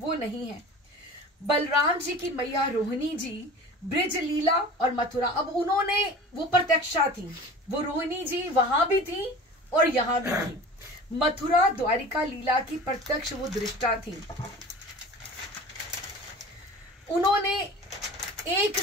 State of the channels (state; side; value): normal; both; correlation 0.39